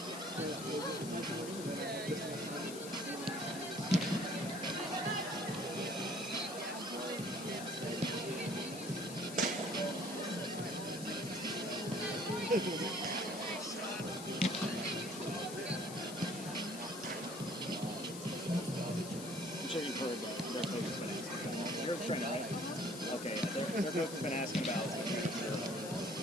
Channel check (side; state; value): left; noise; hiss, 10 dB below the sound